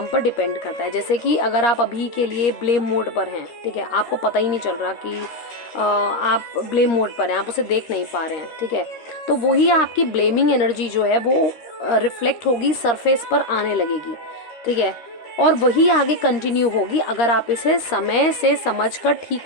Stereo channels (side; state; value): right; late; 13 ms